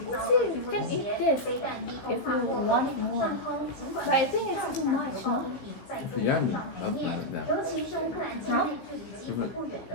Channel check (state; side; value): late; right; 16 ms